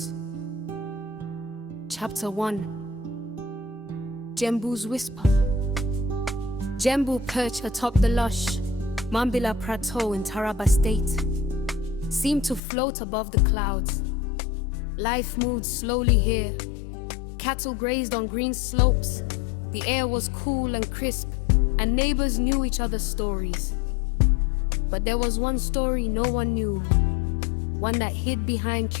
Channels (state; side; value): drops out; right; at 12.6 s